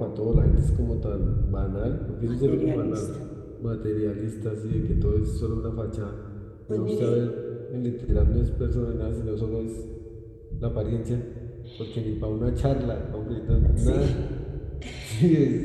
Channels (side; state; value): both; identical; correlation 1.00